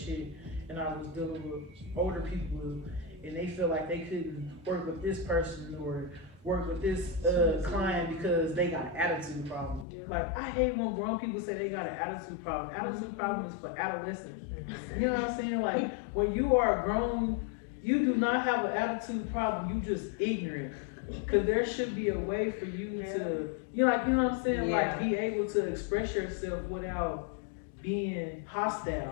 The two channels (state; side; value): drops out; right; at 9.9 s